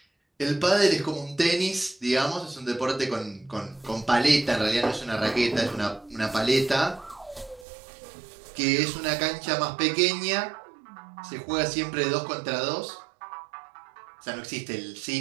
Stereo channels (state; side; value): drops out; left; at 7.7 s